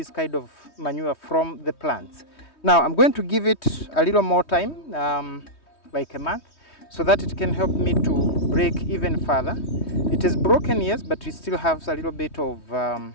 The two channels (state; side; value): late; right; 3.2 ms